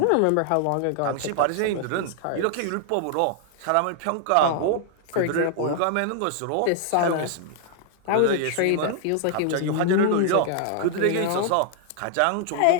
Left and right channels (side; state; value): both; different; correlation 0.00